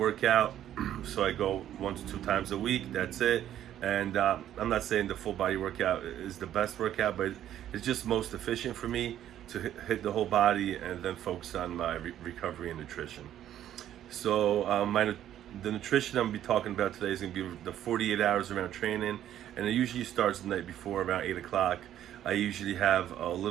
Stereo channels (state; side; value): quieter; left; 11.4 dB